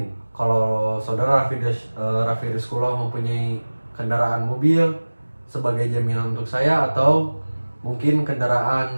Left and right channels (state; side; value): inverted; both; correlation -1.00